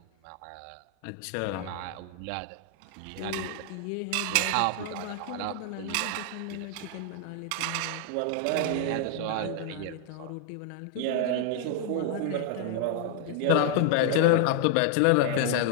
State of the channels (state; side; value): different; both; correlation 0.00